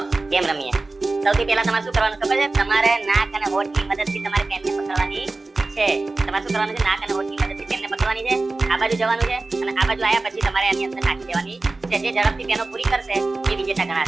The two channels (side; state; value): left; quieter; 3.4 dB